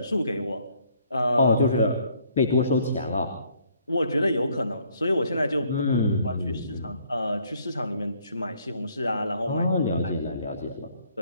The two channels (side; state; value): both; inverted; correlation -0.64